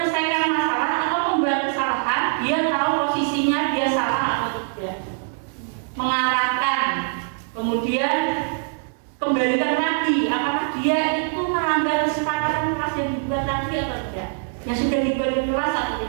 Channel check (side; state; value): left; silent; digital silence